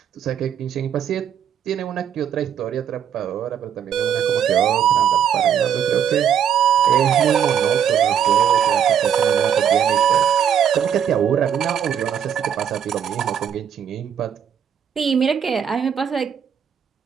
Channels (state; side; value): quieter; left; 8.6 dB